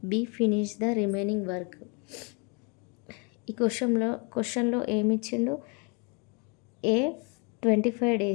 B finish the remaining work? ఈ క్వశ్చన్లో ఏమి ఇచ్చిండు? A 25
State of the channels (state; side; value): quieter; right; 33.6 dB